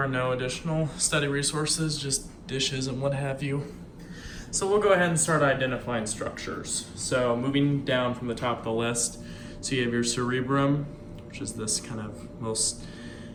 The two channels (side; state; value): both; identical; correlation 1.00